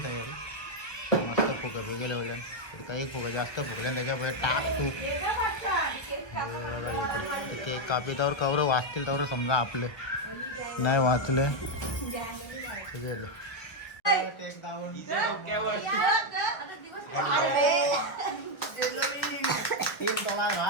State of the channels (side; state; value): right; late; 1.4 ms